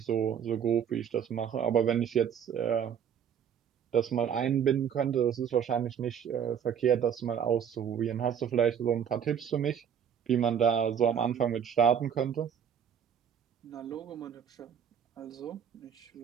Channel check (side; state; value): left; quieter; 8.2 dB